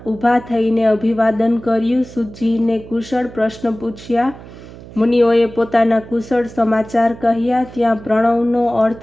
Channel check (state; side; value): noise; right; hum, 17 dB below the sound